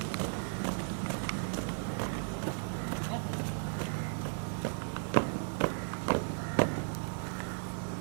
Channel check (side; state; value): left; silent; digital silence